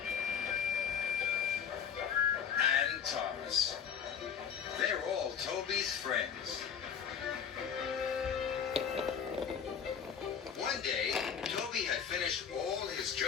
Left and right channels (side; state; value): right; quieter; 7.5 dB